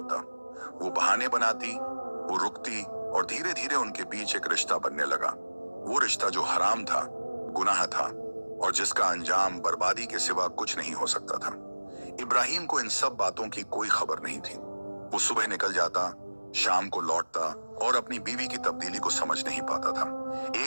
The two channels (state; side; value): inverted; both; correlation -1.00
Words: वो बहाने बनाती, वो रुकती और धीरे धीरे उनके बीच एक रिश्ता बनने लगा। वो रिश्ता जो हराम था, गुनाह था और जिसका अंजाम बर्बादी के सिवा कुछ नहीं हो सकता था। इब्राहिम को इन सब बातों की कोई खबर नहीं थी। वो सुबह निकल जाता, शाम को लौटता और अपनी बीवी की तब्दीली को समझ नहीं पाता था।